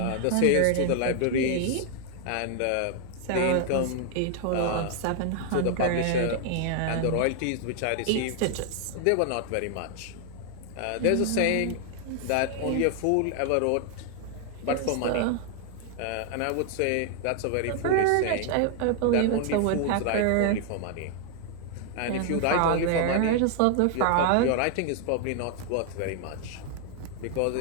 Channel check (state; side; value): different; both; correlation 0.00